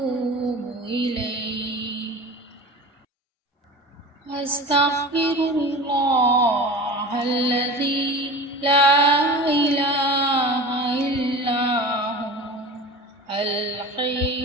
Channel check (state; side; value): normal; both; correlation 0.34